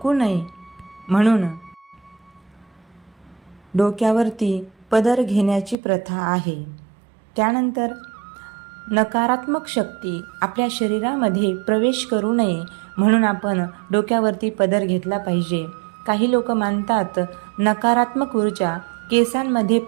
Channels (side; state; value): left; drops out; at 5.8 s